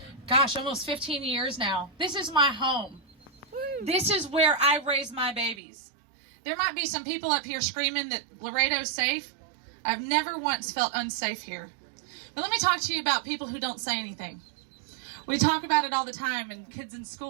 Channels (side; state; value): left; drops out; at 5.6 s